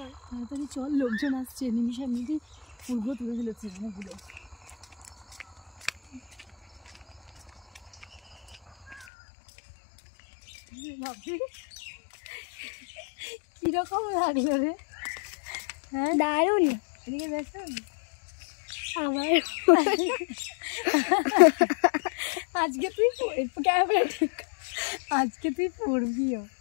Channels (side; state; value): right; drops out; at 9.1 s